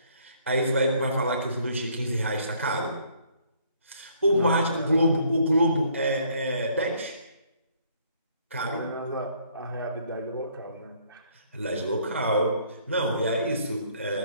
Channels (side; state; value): both; inverted; correlation -0.63